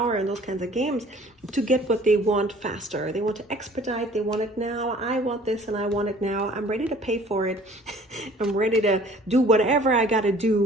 and those kinds of games to get what they want faster. They want to expedite, they want it now. I want this and I want it now. I'm ready to pay for it. I'm ready to do whatever I got to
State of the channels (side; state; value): both; normal; correlation 0.52